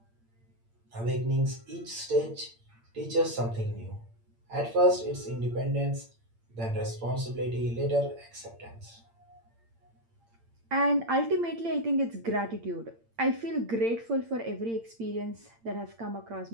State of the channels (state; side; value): late; left; 8.8 ms